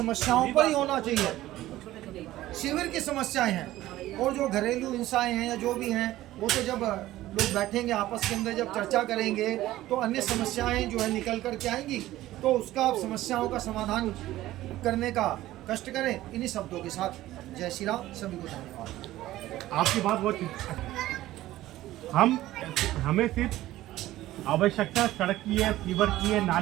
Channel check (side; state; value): left; quieter; 15.4 dB